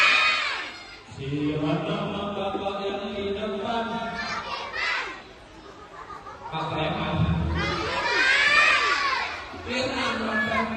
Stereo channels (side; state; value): both; identical; correlation 1.00